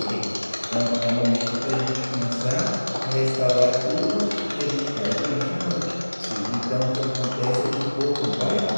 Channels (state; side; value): inverted; both; correlation -1.00